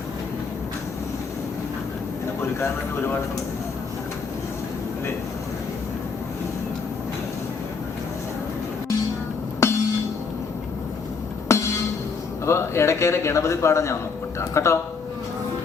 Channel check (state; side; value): quieter; right; 5.1 dB